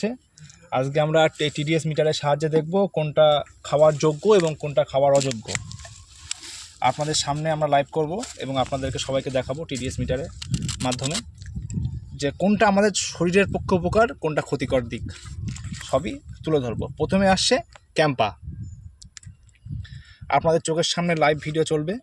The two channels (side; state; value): both; identical; correlation 1.00